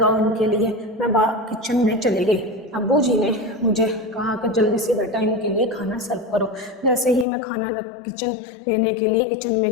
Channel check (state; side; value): drops out; right; at 7.2 s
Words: ان کے لیے۔ میں کچن میں چلی گئی۔ ابو جی نے مجھے کہا کہ جلدی سے بیٹا ان کے لیے کھانا سرو کرو۔ جیسے ہی میں کھانا کچن لینے کے لیے کچن میں